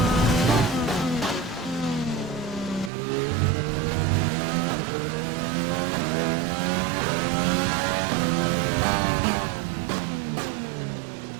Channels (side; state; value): left; drops out; at 2.9 s